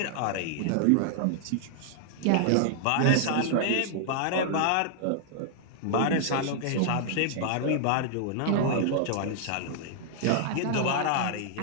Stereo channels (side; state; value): both; different; correlation -0.01